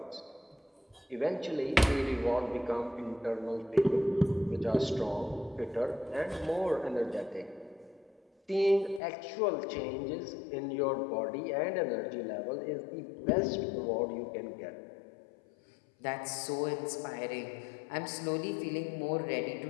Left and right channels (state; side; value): drops out; right; at 9.0 s